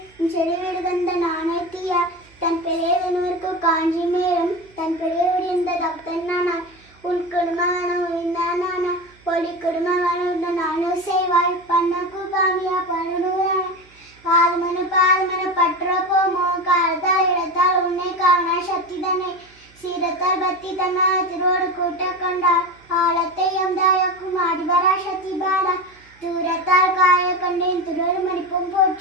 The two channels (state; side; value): noise; right; hum, 29 dB below the sound